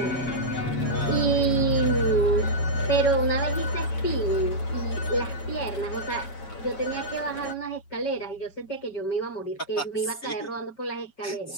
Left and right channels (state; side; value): late; right; 7.2 ms